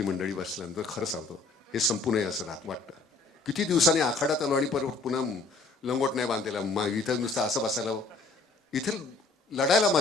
मंडळी बसल्यानंतर. खरं सांगतो, हे संपू नये असं वाटतं. किती दिवसांनी आखाड्यात आलो आणि परत पुन्हा लंगोट नाही बांधलेला, इथं नुसतं असं बसायला. इथे लढायला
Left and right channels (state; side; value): quieter; right; 3.4 dB